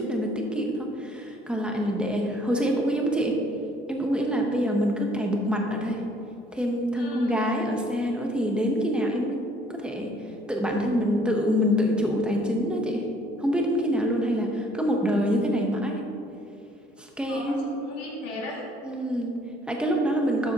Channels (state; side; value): normal; both; correlation 0.60